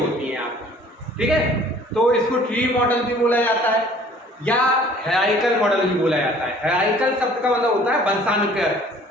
हैं आपकी, ठीक है। तो इसको ट्री मॉडल भी बोला जाता है या हायरार्किकल मॉडल भी बोला जाता है। हायरार्किकल शब्द का मतलब होता है वंशानुक्रम,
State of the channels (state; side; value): normal; both; correlation 0.53